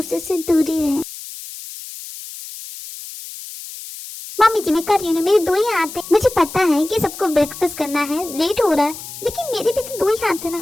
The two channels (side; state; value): left; noise; hiss, 12 dB below the sound